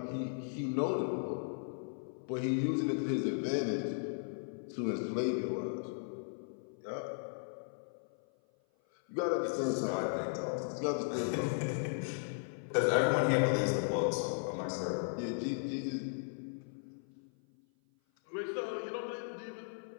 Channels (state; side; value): silent; right; 53 dB below the other